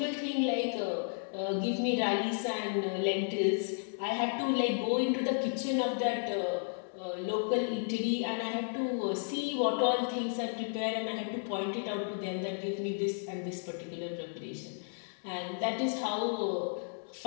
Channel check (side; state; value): right; silent; digital silence